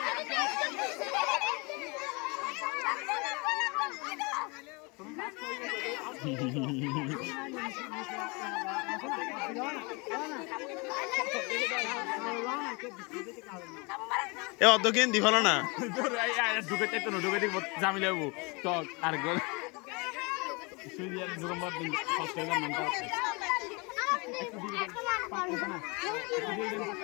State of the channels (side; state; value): right; quieter; 28.9 dB